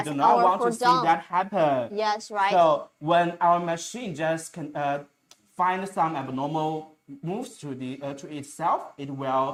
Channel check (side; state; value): both; identical; correlation 1.00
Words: We do not or want for to see down. that happen. Yes, right. So when our machine just can find some abnormal moves to itself, it